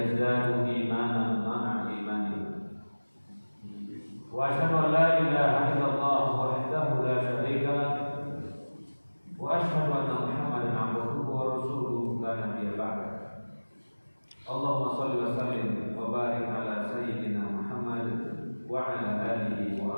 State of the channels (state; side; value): inverted; both; correlation -1.00